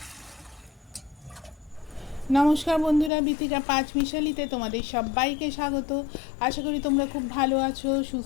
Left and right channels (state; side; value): drops out; right; at 3.1 s